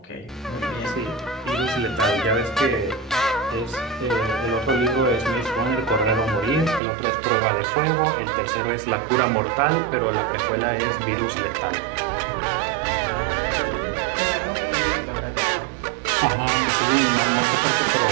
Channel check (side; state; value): left; drops out; at 6.8 s